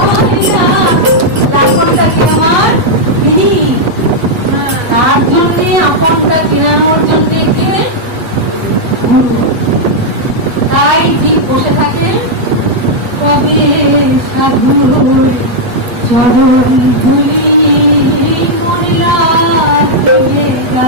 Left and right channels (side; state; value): left; late; 8.2 ms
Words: হয় না। লাখনটা কি আমার তিনি, তার জন্যে আপনটা কেনানোর জন্যে কে? গুরু। তাই ঠিক বসে থাকে, কবে সাধুর চরণ ধুলি মরিলা দেবে